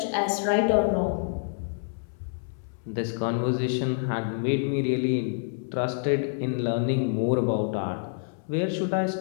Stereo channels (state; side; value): silent; right; 60 dB below the other